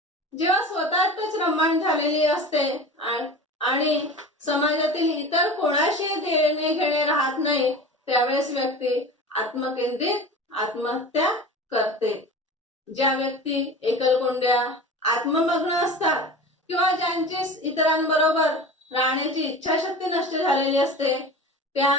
जेव्हा स्वतःतच रममाण झालेली असते आणि समाजातील इतर कोणाशी देणे घेणे राहत नाही त्यावेळेस व्यक्ती आत्मकेंद्रित आत्महत्या करते. ज्या व्यक्ती एकलकोंड्या, आत्ममग्न असतात किंवा ज्यांची इतरांबरोबर राहण्याची इच्छाशक्ती नष्ट झालेली असते त्या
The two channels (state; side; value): normal; both; correlation 0.34